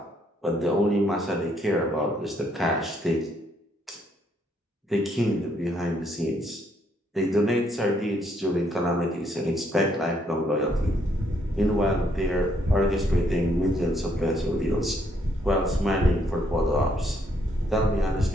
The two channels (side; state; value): both; normal; correlation 0.71